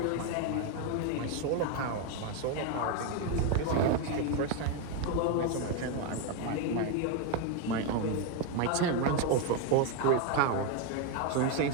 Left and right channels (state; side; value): different; both; correlation 0.02